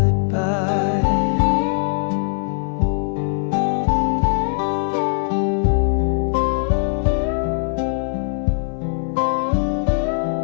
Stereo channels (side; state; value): right; silent; 59 dB below the other